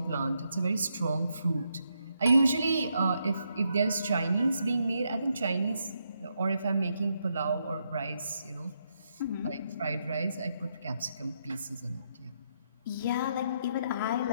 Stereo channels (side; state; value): both; inverted; correlation -0.79